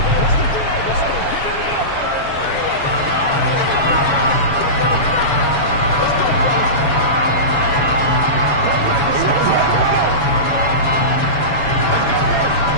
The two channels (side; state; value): right; late; 7.1 ms